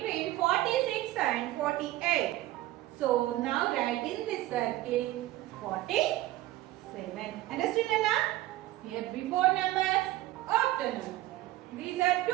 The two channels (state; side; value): quieter; left; 16.2 dB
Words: 46 and 48. So now write in this circle 47. Understood Nana? Here before numbers, after numbers. These are